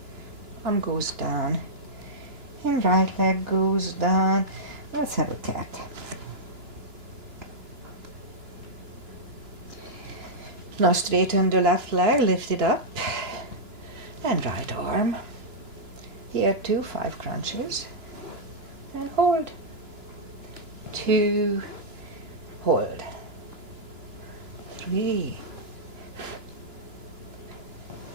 arm goes down, and right leg goes down. Let's have a cat. Now straighten the left leg, lift it up, and right arm. Here too, 5 crunches, and hold. 2, hold. 3,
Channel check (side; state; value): left; late; 2.9 ms